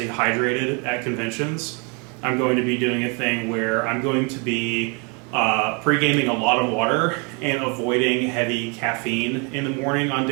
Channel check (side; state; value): left; quieter; 33.2 dB